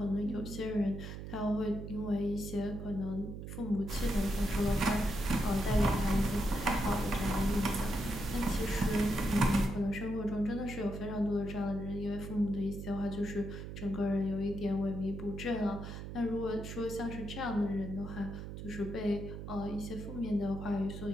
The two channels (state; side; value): noise; right; hum, 8 dB below the sound